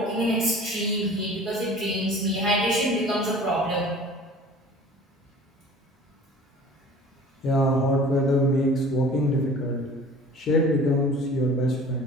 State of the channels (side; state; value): both; normal; correlation 0.45